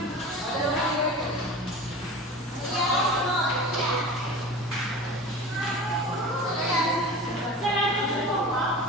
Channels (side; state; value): both; normal; correlation 0.35